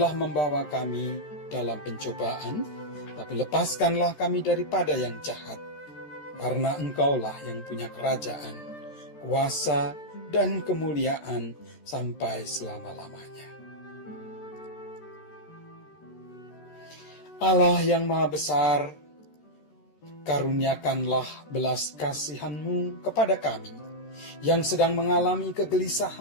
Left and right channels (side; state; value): right; late; 13 ms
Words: membawa kami dalam pencobaan, tapi lepaskanlah kami daripada yang jahat. Karena Engkaulah yang punya kerajaan, kuasa, dan kemuliaan sampai selama-lamanya. Allah yang Maha Besar, karuniakanlah belas kasihan-Mu kepada kami yang sedang mengalami